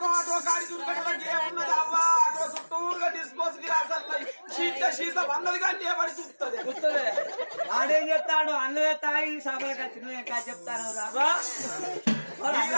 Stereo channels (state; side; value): inverted; both; correlation -1.00